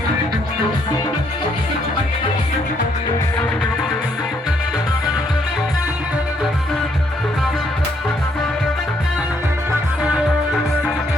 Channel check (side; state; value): both; normal; correlation 0.71